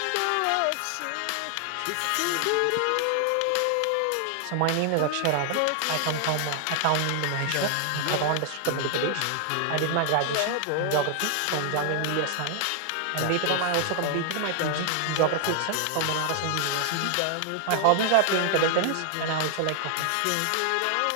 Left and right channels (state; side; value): different; both; correlation 0.00